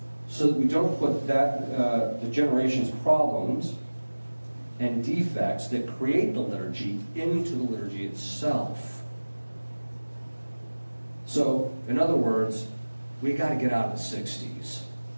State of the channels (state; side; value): inverted; both; correlation -1.00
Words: so that we don't put the generation's problems and defects that create the liturgy into the liturgy itself. So, in other words, we got to get out of the 60s.